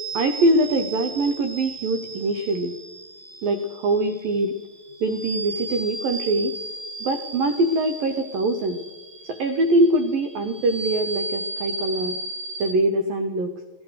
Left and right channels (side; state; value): left; late; 11 ms